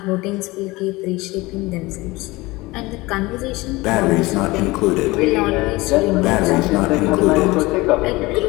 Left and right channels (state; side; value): quieter; right; 21.6 dB